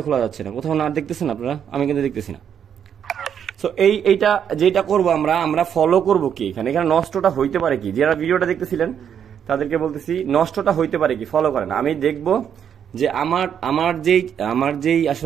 খোলা যাচ্ছে না। কোথাও না দেখতেছেন আপনারা? আমি কিন্তু দেখতেছি না। সো এইটা যেটা করবো আমরা ফলো করবো কি এখানে নষ্টটা হইতে পারে কি? যারা ভিডিওটা দেখতেছিলেন তাদেরকে বলতেছি, নষ্টটা হইতে পারে কি, ফলো করেন। আমি দেখবো যে আমার যেই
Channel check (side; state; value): left; quieter; 8.5 dB